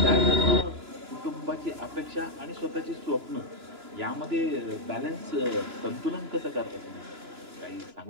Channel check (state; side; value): late; left; 2.9 ms